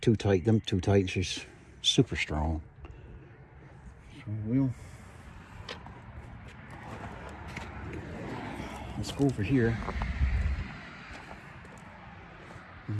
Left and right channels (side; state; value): both; identical; correlation 1.00